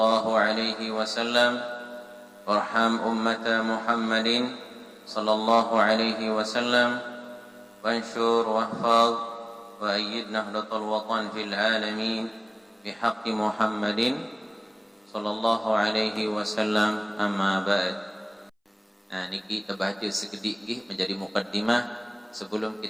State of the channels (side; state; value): both; identical; correlation 1.00